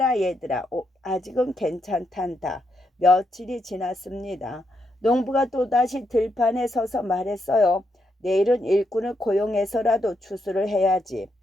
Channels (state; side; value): normal; both; correlation 0.80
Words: 얘들아. 아직은 괜찮단다. 며칠이 지났습니다. 농부가 또다시 들판에 서서 말했어요. 내일은 일꾼을 고용해서라도 추수를 해야지.